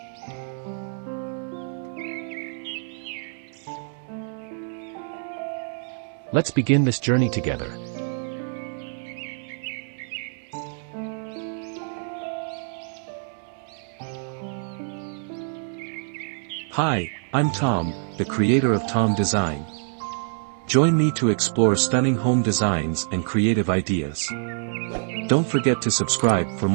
Let's begin this journey together. Hi, I'm Tom, the creator of Tom Design. Join me to explore stunning home designs and creative ideas. Don't forget to subscribe for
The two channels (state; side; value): silent; left; 61 dB below the other